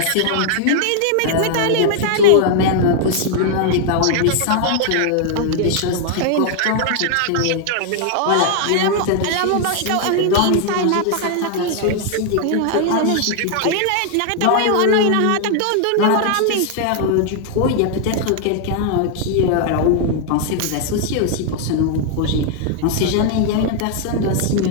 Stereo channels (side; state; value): both; different; correlation 0.00